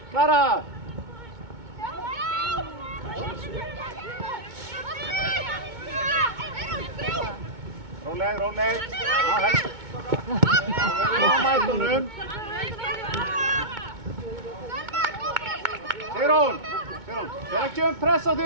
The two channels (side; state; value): left; late; 2.2 ms